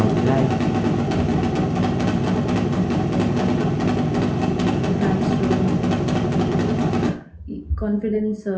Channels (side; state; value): both; identical; correlation 1.00